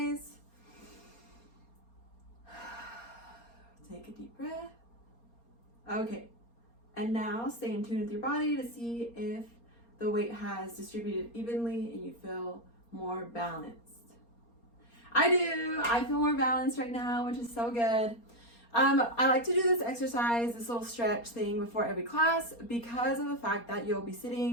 Take a deep breath. Okay, and now stay in tune with your body to see if the weight has distributed evenly and you feel more balanced. I do. I feel more balanced right now, which is so good. I like to do this exercise, this little stretch thing before every class because of the fact that you'll be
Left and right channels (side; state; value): right; late; 4.3 ms